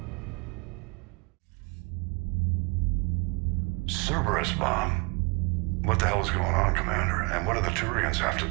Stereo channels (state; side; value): quieter; left; 29.4 dB